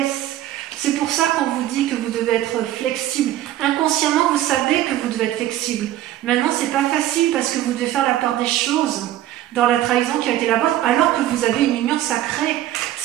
C'est pour ça qu'on vous dit que vous devez être flexible. Inconsciemment, vous savez que vous devez être flexible. Maintenant, c'est pas facile parce que vous devez faire la part des choses dans la trahison qui a été la vôtre, alors que vous avez une union sacrée.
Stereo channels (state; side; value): quieter; left; 13.4 dB